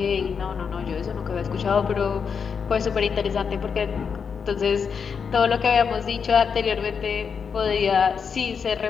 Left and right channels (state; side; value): quieter; right; 6.3 dB